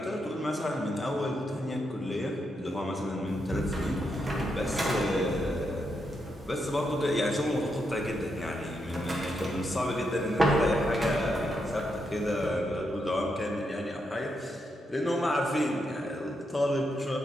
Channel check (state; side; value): normal; both; correlation 0.82